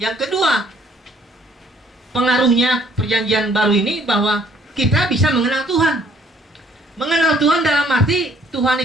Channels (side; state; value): both; normal; correlation 0.62